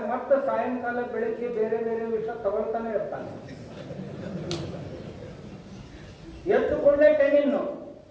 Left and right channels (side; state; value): both; identical; correlation 1.00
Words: ಮತ್ತೆ ಸಾಯಂಕಾಲ ಬೆಳಿಗ್ಗೆ ಬೇರೆ ಬೇರೆ ವಿಷ ತಗೊಳ್ತಾನೆ ಇರ್ತಾನೆ. ಎತ್ತುಕೊಂಡೇ ಟೆನಿನ್ನು,